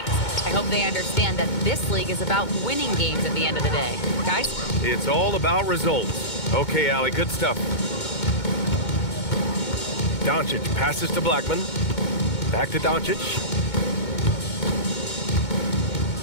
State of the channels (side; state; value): right; late; 2.2 ms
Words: I hope they understand that this league is about winning games at the end of the day. Guys? It's all about results. Okay, Allie, good stuff. Doncic passes to Blackman. Back to Doncic.